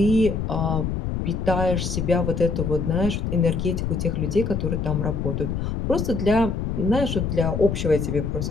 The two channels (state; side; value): noise; left; rumble, 2 dB below the sound